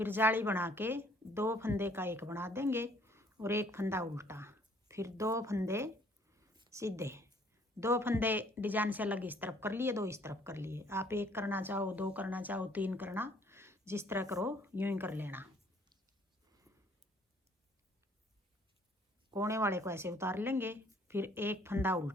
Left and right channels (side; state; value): both; normal; correlation 0.60